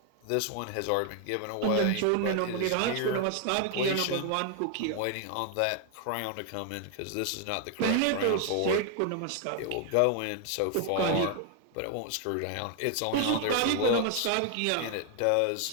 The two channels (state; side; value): different; both; correlation 0.00